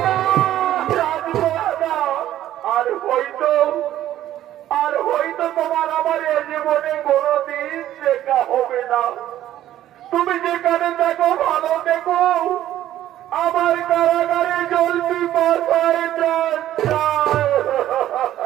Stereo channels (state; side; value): quieter; left; 12.7 dB